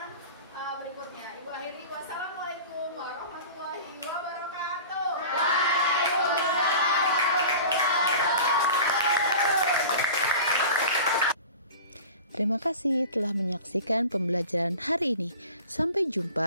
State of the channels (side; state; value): both; inverted; correlation -0.38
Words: berikutnya. Ibu akhiri, wassalamualaikum warahmatullahi wabarakatuh. Terima kasih telah menyaksikan pembelajaran hari ini. Sampai